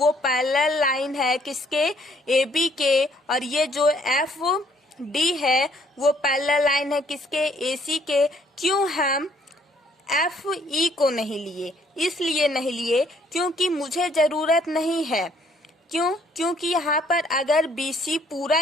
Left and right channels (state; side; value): normal; both; correlation 0.64